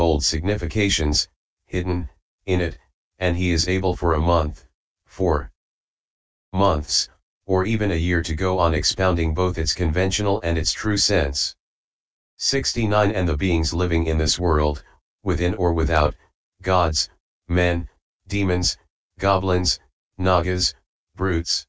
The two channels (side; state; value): both; identical; correlation 1.00